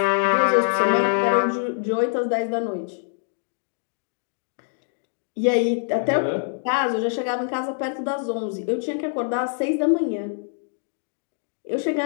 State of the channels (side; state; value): right; silent; digital silence